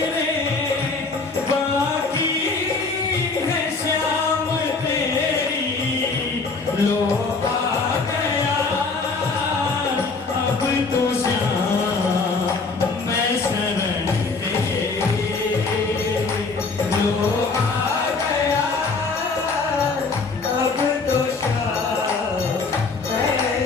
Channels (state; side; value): quieter; right; 4.1 dB